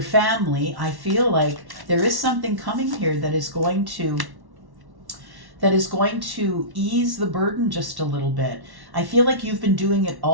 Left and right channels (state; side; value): late; left; 1.1 ms